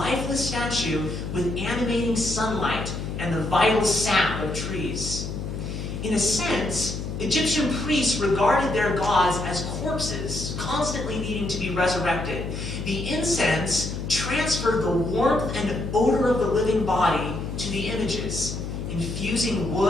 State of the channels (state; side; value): noise; left; hum, 5 dB below the sound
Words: statue with animating sunlight and the vital sap of trees. In a sense, Egyptian priests regarded their gods as corpses, constantly needing to be resurrected. The incense transferred the warmth and odor of the living body to the images, infusing